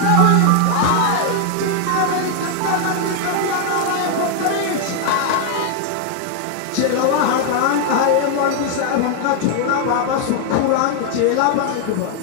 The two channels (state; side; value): different; both; correlation 0.00